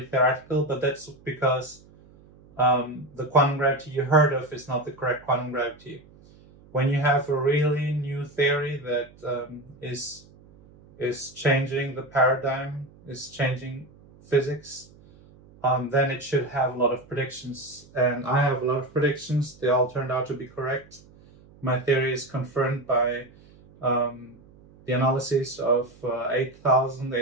theoretical, but that's because the quantum gravity you heard of is not the correct quantum gravity. When you have a really new theory that is changing the paradigm, is changing physics, then it should have a lot of predictions. And I have a lot of predictions. They all turned out to be correct. My theory is confirmed by the analysis of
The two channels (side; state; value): right; noise; hum, 25 dB below the sound